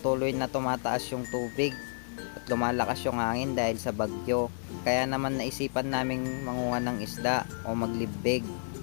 na tumataas yung tubig at lumalakas yung hangin dahil sa bagyo. Kaya naman naisipan naming manguha ng isda o maglibig.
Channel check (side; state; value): right; silent; 57 dB below the other